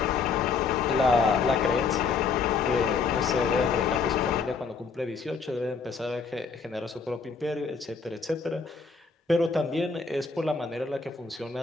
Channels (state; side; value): quieter; right; 5.1 dB